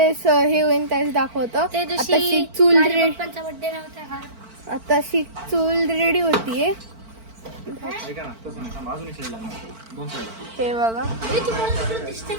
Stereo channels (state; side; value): late; left; 4.5 ms